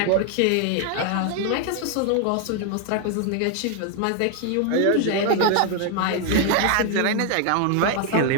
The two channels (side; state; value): both; different; correlation 0.01